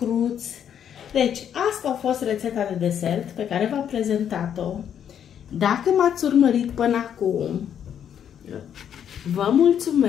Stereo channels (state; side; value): quieter; right; 9.0 dB